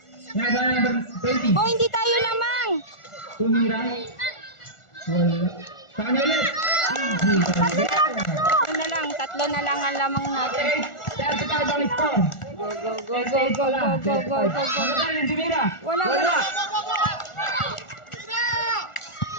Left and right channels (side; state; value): right; late; 1.4 ms